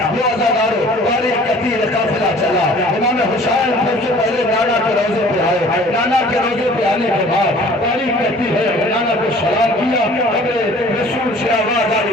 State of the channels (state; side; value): normal; both; correlation 0.50